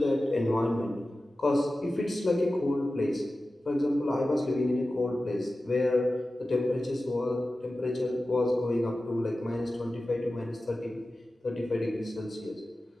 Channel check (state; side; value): normal; both; correlation 0.95